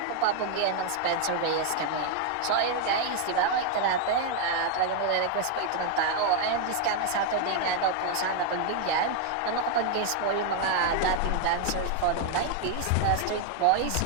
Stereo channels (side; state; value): both; different; correlation 0.00